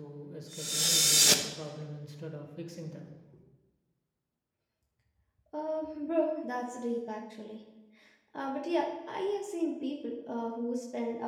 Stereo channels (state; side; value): identical; both; correlation 1.00